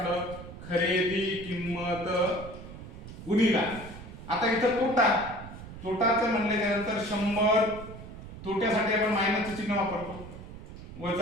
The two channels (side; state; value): right; noise; rumble, 13 dB below the sound